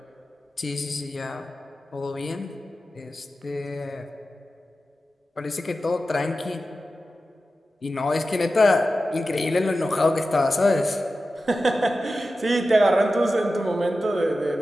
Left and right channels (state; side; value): normal; both; correlation 0.93